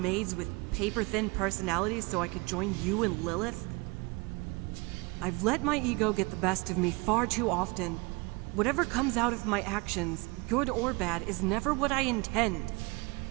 with paper-thin personalities so I could join you and Lillith? I've let my ego get the best of me far too often. Whatever comes out of my actions, good or bad, is never what I intend.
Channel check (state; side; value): quieter; left; 26.9 dB